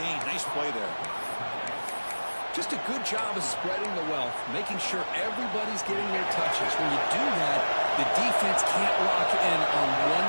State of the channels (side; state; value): both; inverted; correlation -1.00